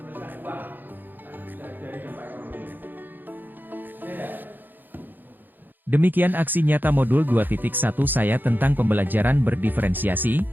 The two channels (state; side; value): late; left; 0.089 ms